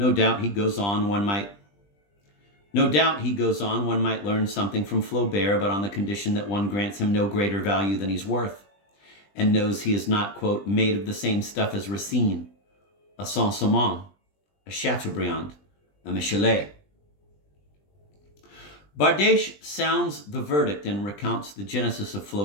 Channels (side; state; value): right; late; 20 ms